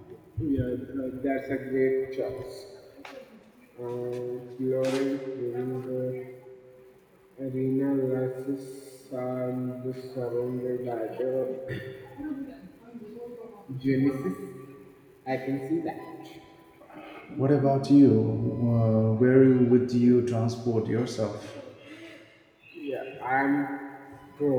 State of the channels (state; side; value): identical; both; correlation 1.00